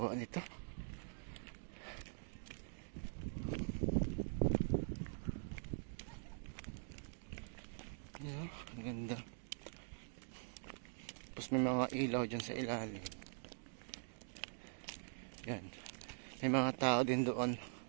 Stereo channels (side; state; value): left; silent; digital silence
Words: nito. Yan, ang ganda. Tapos may mga ilaw dyan sa ilalim. Yan, may mga tao din doon.